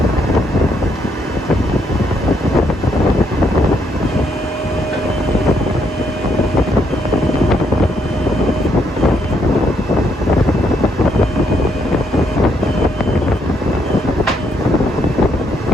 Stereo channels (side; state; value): both; normal; correlation 0.74